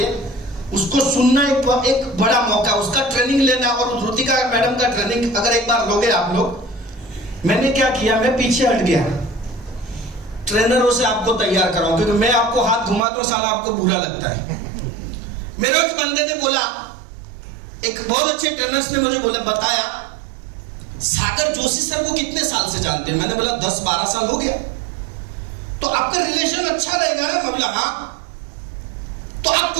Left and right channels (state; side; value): drops out; left; at 13.0 s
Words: उसको सुनना एक बड़ा मौका, उसका ट्रेनिंग लेना। और ऋतिका मैडम का ट्रेनिंग अगर एक बार लोगे आप लोग, मैंने क्या किया, मैं पीछे हट गया, ट्रेनरों से आपको तैयार कराऊं, क्योंकि मैं आपको हाथ घुमाता हूं साला आपको बुरा लगता है। मेरे एक बंदे ने बोला, एक बहुत अच्छे ट्रेनर्स ने मुझे बोला, बताया सागर जोशी सर को कितने साल से जानते हैं? मैंने बोला 10-12 साल हो गया। तो आपका रिलेशन अच्छा रहेगा ना? मैं बोला हाँ। तो आप